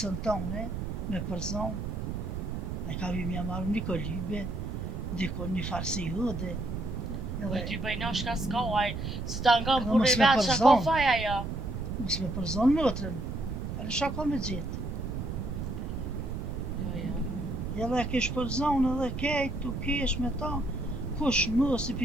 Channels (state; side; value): noise; right; rumble, 4 dB below the sound